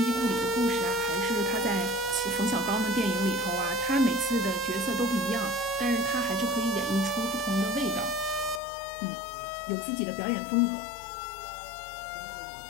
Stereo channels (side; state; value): right; drops out; at 8.6 s